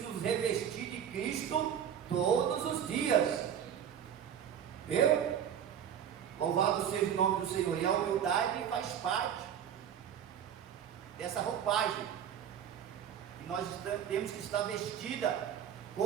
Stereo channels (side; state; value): left; quieter; 9.0 dB